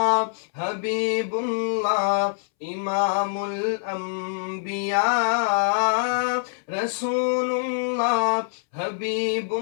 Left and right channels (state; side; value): silent; right; 62 dB below the other